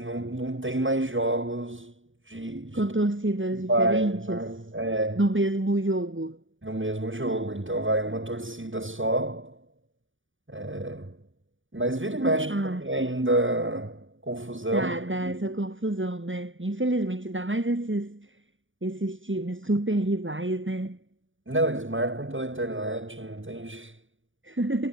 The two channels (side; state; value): left; late; 0.57 ms